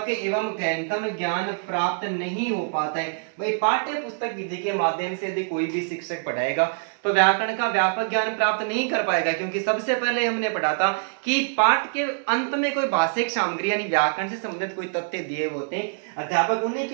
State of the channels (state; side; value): silent; left; digital silence